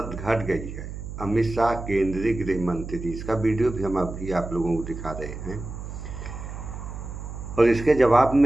घट गई है। अमित शाह केंद्रीय गृह मंत्री, इसका वीडियो भी हम अभी आप लोगों को दिखा रहे हैं। और इसके जवाब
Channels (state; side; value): noise; right; hum, 9 dB below the sound